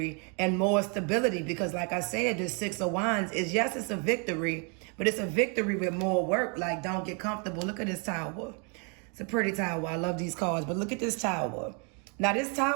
and more stability. Because like I said, the Six of Wands is, yes, it's a victory, but it's a victory with more work. Like, don't get comfortable. Look at this tower. It's a pretty tower. I love these cards, but look at this tower. Now, this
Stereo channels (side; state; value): left; quieter; 36.2 dB